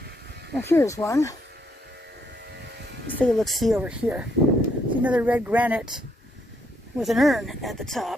Now here's one. Let's take a look-see over here. See another red granite with an urn at the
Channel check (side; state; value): both; normal; correlation 0.73